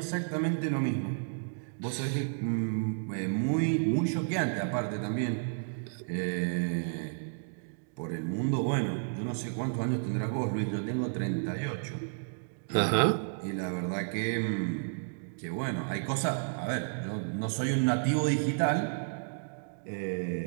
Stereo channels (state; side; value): silent; left; digital silence